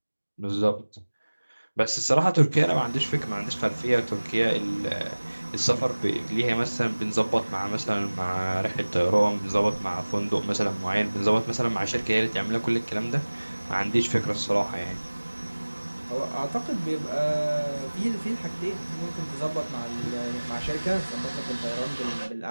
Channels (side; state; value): both; inverted; correlation -1.00